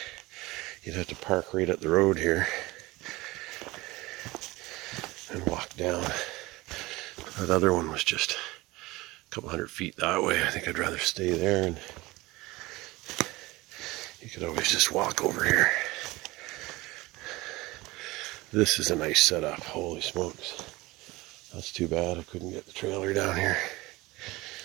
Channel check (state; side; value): quieter; left; 20.9 dB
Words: You'd have to park right at the road here. and walk down. That other one was just a couple 100 feet that way. I think I'd rather stay there, and you could always just walk over here. This is a nice setup. Holy smokes. That's too bad I couldn't get the trailer down here.